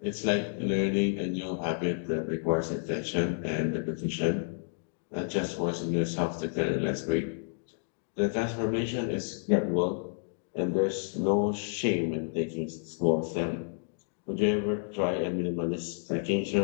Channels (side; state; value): right; silent; digital silence